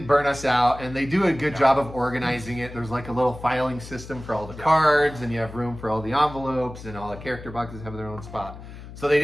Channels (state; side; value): noise; left; hum, 14 dB below the sound